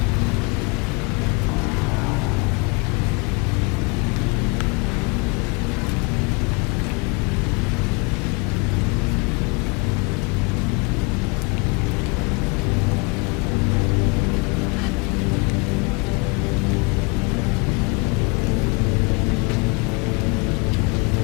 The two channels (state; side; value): quieter; right; 29.1 dB